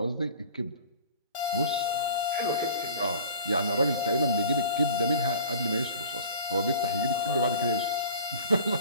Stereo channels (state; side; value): inverted; both; correlation -0.42